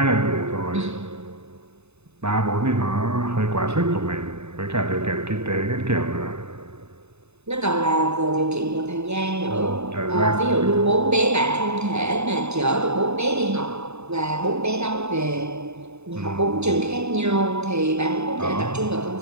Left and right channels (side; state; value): left; late; 0.81 ms